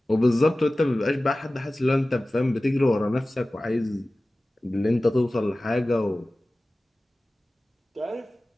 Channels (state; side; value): normal; both; correlation 0.97